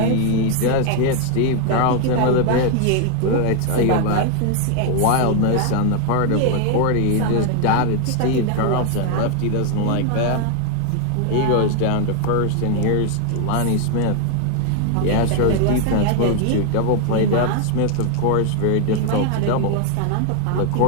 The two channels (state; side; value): different; both; correlation 0.00